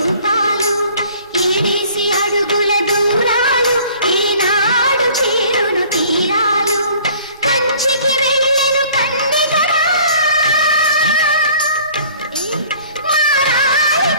ఏడేసి అడుగుల దూరాలు ఏనాడు చేరును తీరాలు కంచికి వెళ్ళెను కందిగరా మారాలి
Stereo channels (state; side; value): inverted; both; correlation -0.51